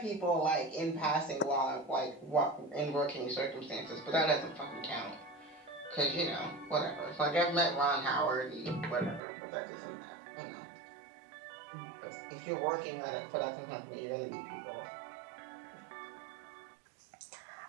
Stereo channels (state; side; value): drops out; left; at 9.2 s